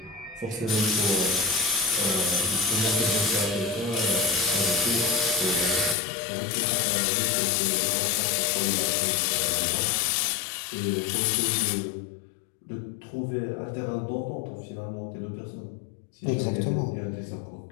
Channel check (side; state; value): right; drops out; at 6.0 s